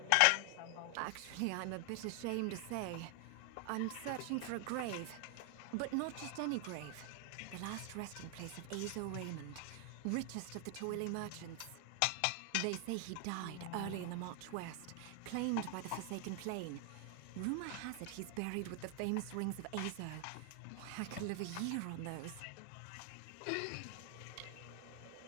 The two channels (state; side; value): different; both; correlation 0.00